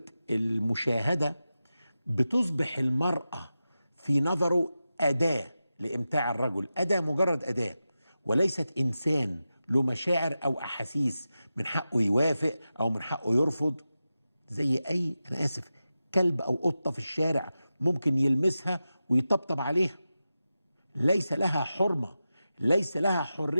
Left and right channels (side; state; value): both; inverted; correlation -0.92